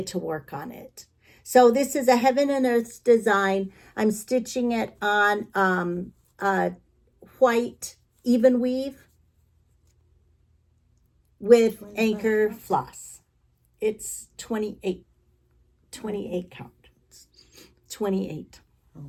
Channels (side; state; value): both; identical; correlation 1.00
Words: to work on it. So this is a Heaven and Earth design. I'm stitching it on white even weave with anchor floss. It's 28 count. 28.